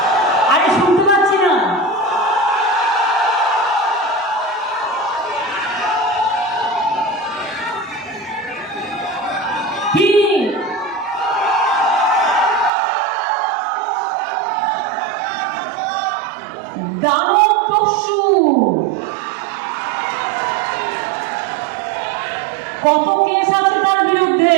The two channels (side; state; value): left; drops out; at 12.7 s